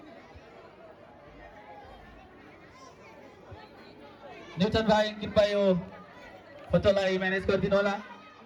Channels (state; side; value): identical; both; correlation 1.00